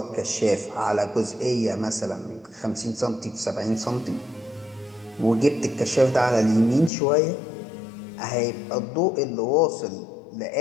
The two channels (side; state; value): right; drops out; at 6.9 s